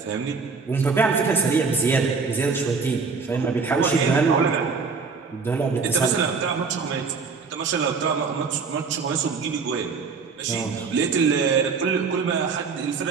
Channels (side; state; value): left; quieter; 5.0 dB